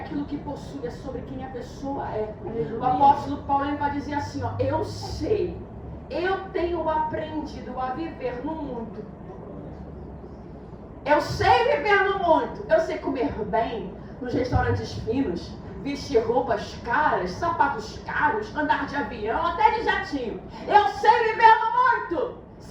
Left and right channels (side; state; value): both; identical; correlation 1.00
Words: que possui, é sobre quem a pessoa é. O apóstolo Paulo ele vai dizer assim, ó: eu sei, eu tenho aprendido a viver no muito. Eu sei viver no muito. Eu sei comer bem nos restaurantes finos, vestir roupas caras, sapatos caros, andar de avião, até de jatinho. Eu sei viver no muito.